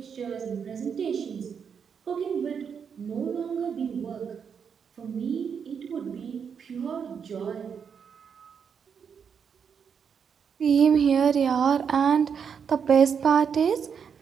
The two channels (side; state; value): left; quieter; 6.9 dB